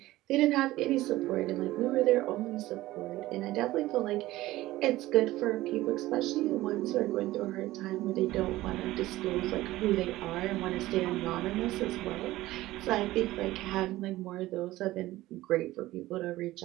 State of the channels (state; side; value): quieter; left; 17.0 dB